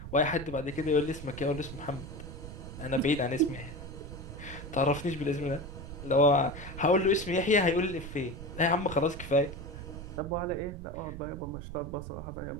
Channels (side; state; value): right; noise; rumble, 10 dB below the sound